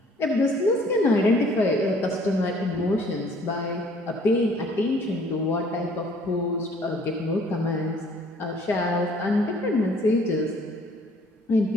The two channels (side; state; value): both; normal; correlation 0.58